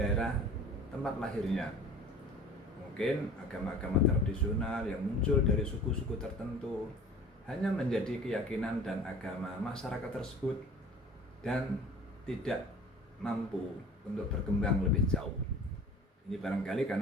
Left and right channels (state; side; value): normal; both; correlation 0.44